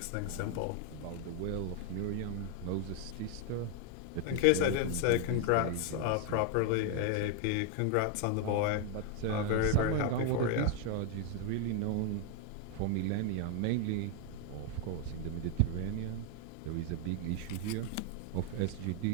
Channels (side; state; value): both; different; correlation 0.00